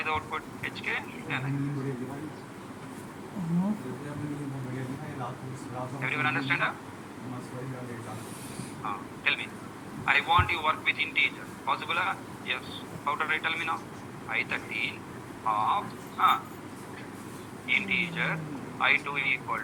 the output? HK, NIT. Everyone understand? Tell me. I want you work with integer. Possible? Yes. How to write? Tell me now. I13 of integer I2 equal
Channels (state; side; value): identical; both; correlation 1.00